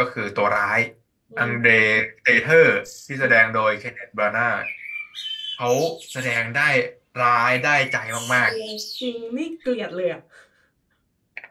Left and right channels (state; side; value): identical; both; correlation 1.00